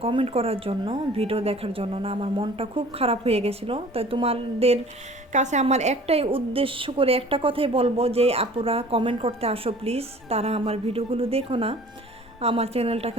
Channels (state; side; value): normal; both; correlation 0.48